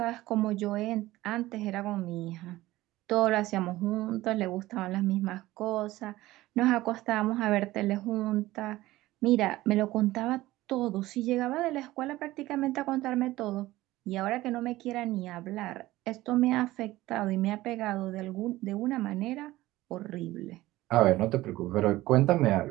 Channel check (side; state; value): left; quieter; 17.3 dB